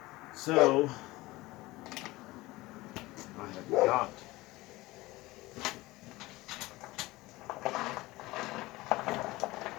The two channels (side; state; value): right; quieter; 19.8 dB